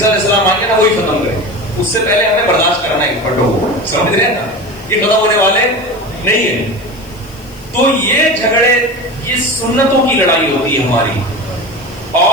علیہ السلام آئے نا وہی ختم کرے, اس سے پہلے ہمیں برداشت کرنا ہے پھٹوں کو, سمجھ رہے ہیں نا, یہ ختم ہونے والے نہیں ہیں. تو یہ جھگڑے, یہ سنتوں کی لڑائی ہوتی ہے ہماری.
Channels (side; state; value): left; noise; hiss, 24 dB below the sound